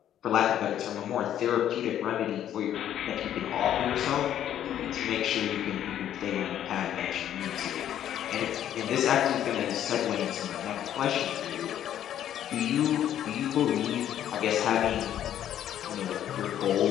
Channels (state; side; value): quieter; right; 10.9 dB